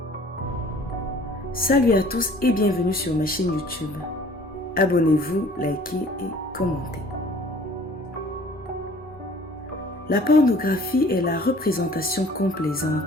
Salut à tous et bienvenue sur ma chaîne YouTube. Abonnez-vous, likez et commentez. La pornographie est la représentation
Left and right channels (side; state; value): both; normal; correlation 0.51